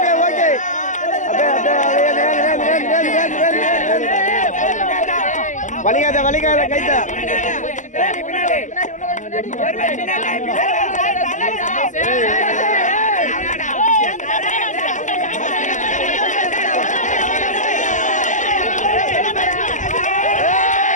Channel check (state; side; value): late; right; 0.36 ms